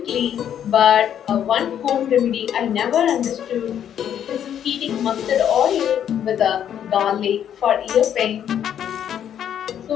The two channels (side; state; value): right; quieter; 9.6 dB